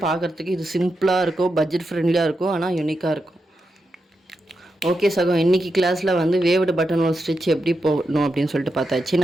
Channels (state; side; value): normal; both; correlation 0.87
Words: பார்க்குறதுக்கு இது சிம்பிளாக இருக்கும், பட்ஜெட் ஃப்ரெண்ட்லியாக இருக்கும், ஆனால் யூனிக்காக இருக்கும். ஓகே சகோ, இன்றைக்கி கிளாஸில் வந்து வேவ்டு பட்டன் ஹோல் ஸ்டிச் எப்படி போடணும் அப்படின்னு சொல்லிட்டு பார்த்தாச்சு.